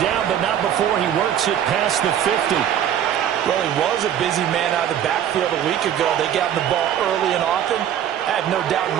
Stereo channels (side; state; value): left; quieter; 10.0 dB